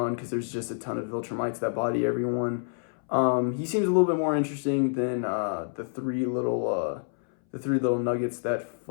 because there's just a ton of Viltrumites that body everyone. He seems a little bit more interesting than the three little nuggets that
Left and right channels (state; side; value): silent; right; 60 dB below the other